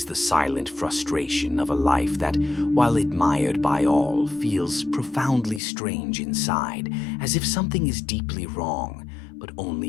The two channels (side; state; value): right; drops out; at 5.6 s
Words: the silent frustration of a life that, while admired by all, feels profoundly strange inside, as if something is deeply wrong, but only